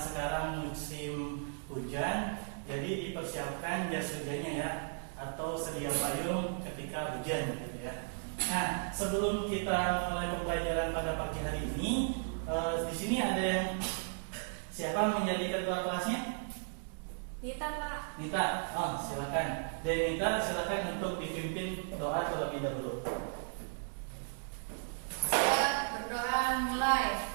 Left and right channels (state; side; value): silent; left; digital silence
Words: musim hujan, jadi dipersiapkan jas hujannya ya, atau sedia payung ketika hujan gitu ya. Nah, sebelum kita mulai pembelajaran pada pagi hari ini, di sini ada yang siapa menjadi ketua kelasnya? Nita, Pak. Nita, oh silakan. Dan Nita silakan untuk dipimpin doa terlebih dahulu. Saya berdoa mulai.